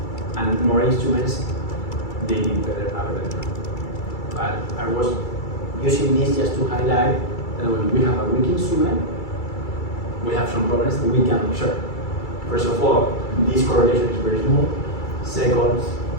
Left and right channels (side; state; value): right; late; 2.3 ms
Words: and more instruments, they did better. But I was using this just to highlight that when we have a weak instrument, we have some problems that we can observe. First of all, this correlation is very small. Second,